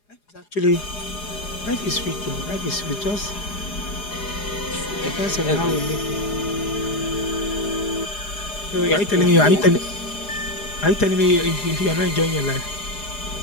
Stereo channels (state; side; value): late; right; 4.9 ms